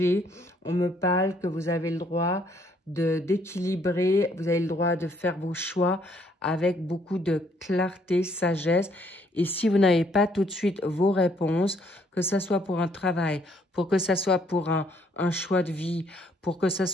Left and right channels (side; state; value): both; normal; correlation 0.66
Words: on me parle que vous avez le droit d'équilibrer, vous avez le droit de faire vos choix avec beaucoup de clarté, sagesse. Et si vous n'avez pas tout de suite vos réponses, que ce soit pour un travail, pour que ce soit pour un choix de vie, pour que ce